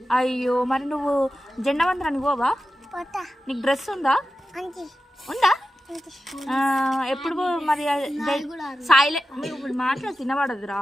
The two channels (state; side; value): normal; both; correlation 0.92